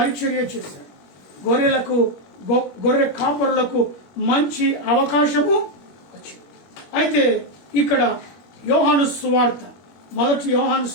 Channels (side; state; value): right; late; 21 ms